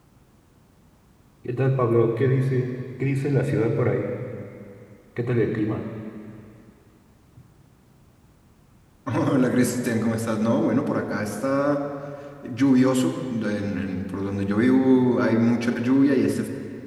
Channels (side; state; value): both; identical; correlation 1.00